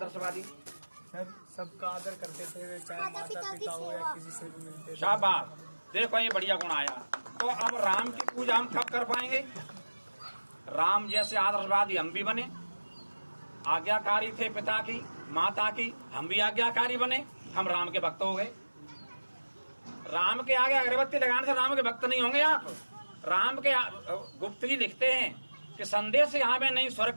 सर, सबका आदर करते थे, चाहे माता पिता हो या किसी से भी मिलते थे। शाबाश, देखो ये बढ़िया गुण आया। तो अब राम की पूजा हम कब कर पाएंगे? राम जैसे आदर्शवादी हम भी बने, आज्ञाकारी थे पिता की माता की, हम भी आज्ञाकारी बने, हम राम के भक्त हो गए। राम के आगे अगरबत्ती लगाने से राम के भक्त नहीं होंगे आप। राम के गुप्त जी लिखते हैं कि संदेश यहाँ में नहीं स्वर्ग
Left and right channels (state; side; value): inverted; both; correlation -1.00